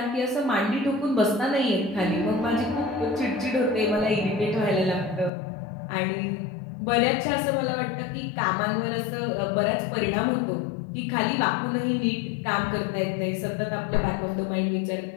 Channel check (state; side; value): drops out; right; at 5.3 s